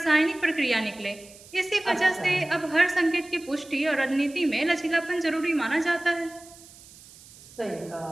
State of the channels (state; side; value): noise; right; hiss, 21 dB below the sound